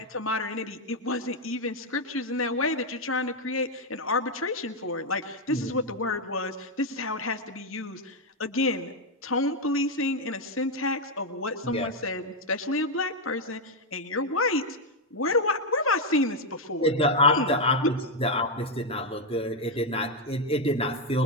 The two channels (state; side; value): normal; both; correlation 0.02